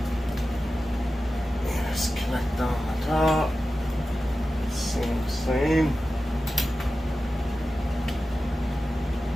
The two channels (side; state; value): both; normal; correlation 0.94